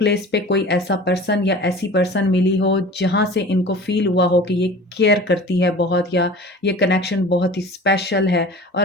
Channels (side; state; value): both; normal; correlation 0.40